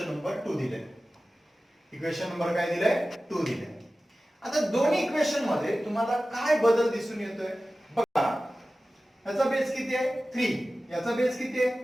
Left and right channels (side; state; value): both; normal; correlation 0.96